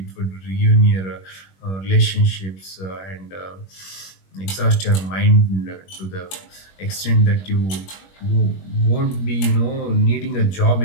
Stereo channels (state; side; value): late; right; 21 ms